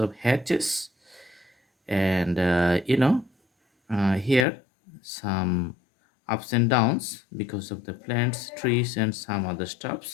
hatches. And here some ups and downs because of the plants, trees, and some other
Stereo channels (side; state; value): right; drops out; at 4.5 s